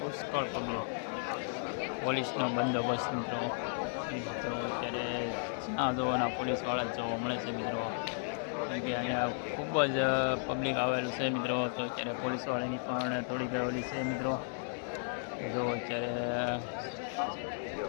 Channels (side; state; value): right; silent; digital silence